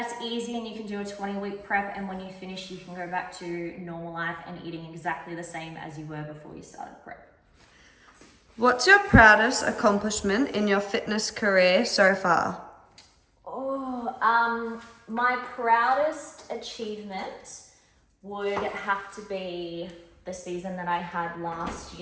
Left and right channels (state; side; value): identical; both; correlation 1.00